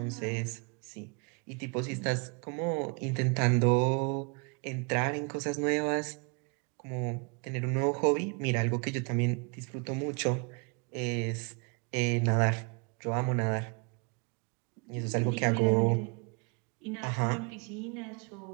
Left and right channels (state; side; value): quieter; left; 33.7 dB